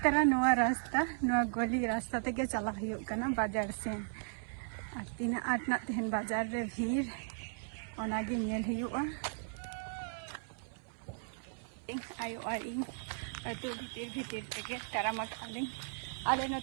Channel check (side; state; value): left; silent; 54 dB below the other